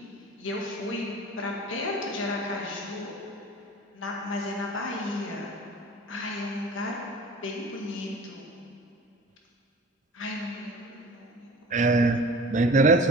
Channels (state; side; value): normal; both; correlation 0.41